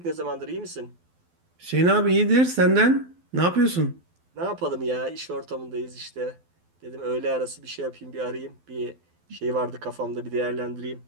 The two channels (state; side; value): late; left; 12 ms